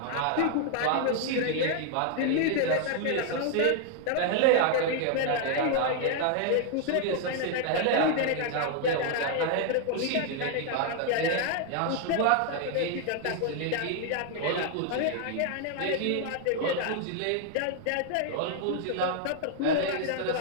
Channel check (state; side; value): different; both; correlation 0.00